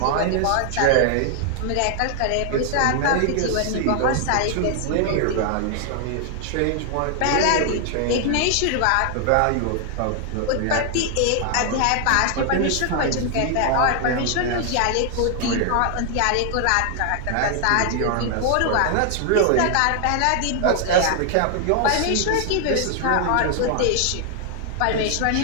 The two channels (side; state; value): both; different; correlation 0.00